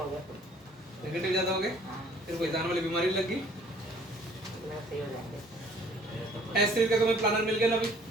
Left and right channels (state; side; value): normal; both; correlation 0.56